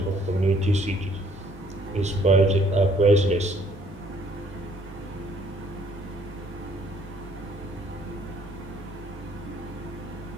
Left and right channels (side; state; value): both; normal; correlation 0.62